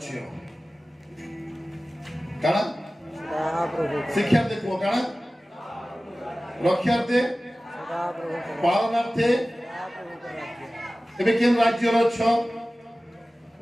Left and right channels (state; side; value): normal; both; correlation 0.97